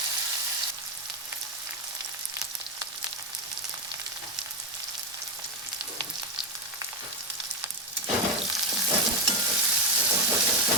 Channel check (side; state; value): both; normal; correlation 0.09